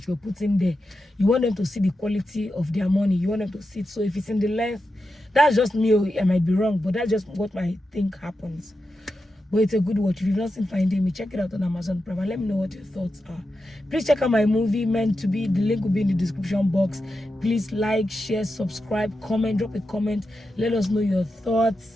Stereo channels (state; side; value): normal; both; correlation 0.89